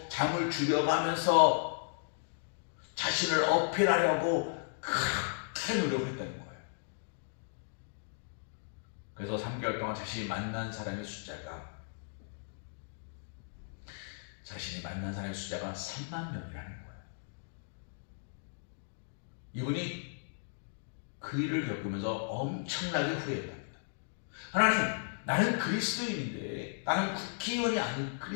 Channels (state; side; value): silent; right; digital silence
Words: 잠을 줄여가면서 자신을 어필하려고 그렇게 노력했다는 거예요. 그래서 3개월 동안 자신이 만난 사람의 숫자가 3만 명이라는 거예요. 이분이 그 일을 겪으면서 엄청나게 후회했답니다. 하나님, 나는 그리스도인인데, 나는 국회의원이 아닌